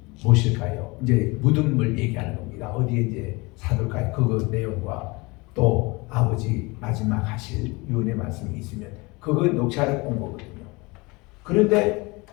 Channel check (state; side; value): quieter; right; 25.4 dB